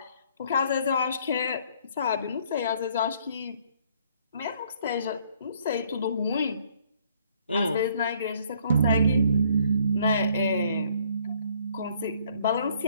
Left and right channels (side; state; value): both; inverted; correlation -0.63